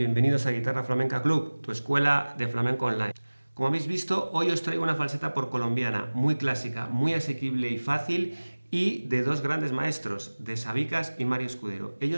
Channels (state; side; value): inverted; both; correlation -1.00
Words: a Guitarra Flamenca Club, tu escuela de flamenco online. Como habéis visto, hoy os traigo una falseta por colombiana, muy clásica, muy asequible y fácil, y de dos grandes maestros, de Sabicas y Mario Escudero.